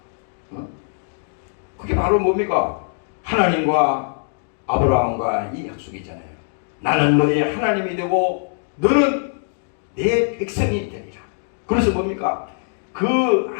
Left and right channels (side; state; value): right; silent; 64 dB below the other